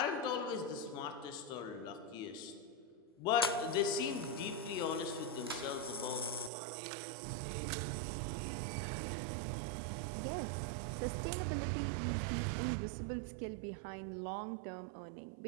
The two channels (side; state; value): left; drops out; at 6.5 s